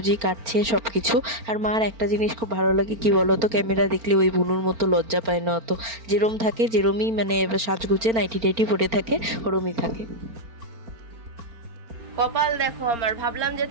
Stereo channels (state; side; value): late; left; 4.4 ms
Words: কাটছে সব কিছু। আর মার একটা জিনিস খুব ভালো লাগে কি বলো তো, ক্যামেরা দেখলে ওই বুনুর মতো লজ্জা পায় না অত, যেরম থাকে যেরমই মানে সাজগুজে নাইটি টাইটি পরে থাকে ওরমই থাকে। কপাল দেখো আমার, ভাবলাম যে